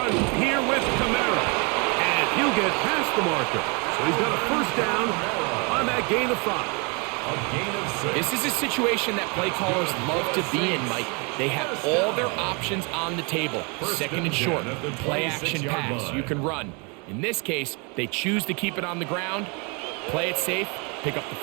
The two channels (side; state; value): left; quieter; 32.4 dB